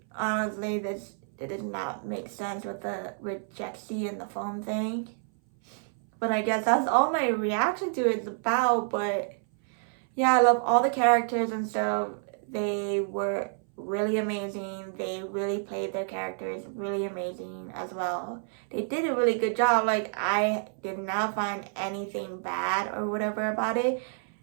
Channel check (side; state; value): left; silent; 59 dB below the other